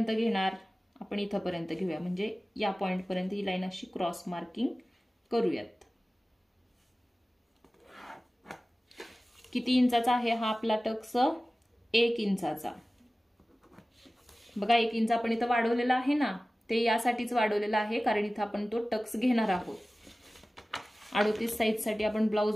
घेणार, आपण इथपर्यंत घेऊया, म्हणजे या पॉइंट पर्यंत ही लाईन अशी क्रॉस मार्किंग करूयात. किती इंचाचा आहे हा आपला टक्स? 1 इंचाचा. बघा 1 इंच आपण इथं वाढवलेला आहे ना, ते यासाठीच वाढवलेला आहे कारण इथं आपण तो टक्स घेणार आहोत. 38 साईज साठी आपण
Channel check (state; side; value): normal; both; correlation 0.97